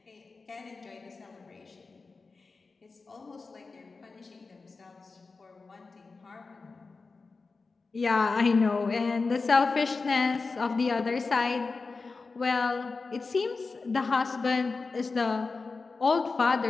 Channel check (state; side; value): quieter; right; 4.1 dB